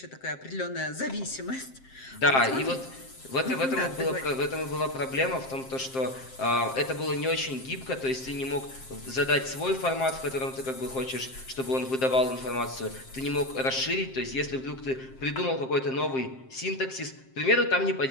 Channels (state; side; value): late; right; 7.6 ms